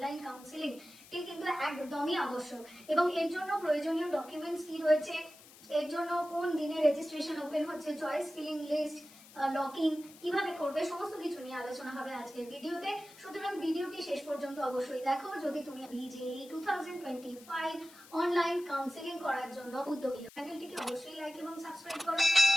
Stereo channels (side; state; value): left; noise; hiss, 21 dB below the sound